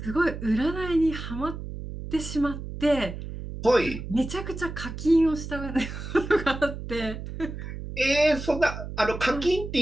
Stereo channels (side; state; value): right; noise; hum, 9 dB below the sound